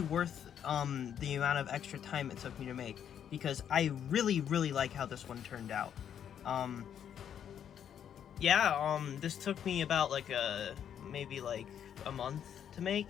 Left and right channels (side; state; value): right; quieter; 9.0 dB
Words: the amount of extra time it took me to make, because I really like how this one turned out. This took me about like maybe like a month to